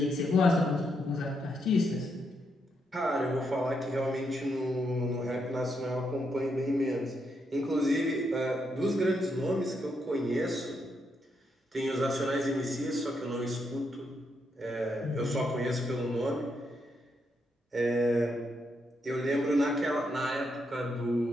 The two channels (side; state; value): both; normal; correlation 0.79